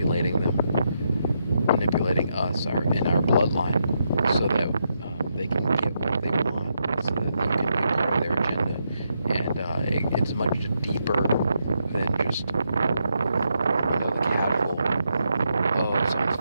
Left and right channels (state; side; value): inverted; both; correlation -0.81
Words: manipulating us in our bloodline so that they can get what they want, so that they can be part of their agenda. And it's much deeper than just the casual, oh, someone's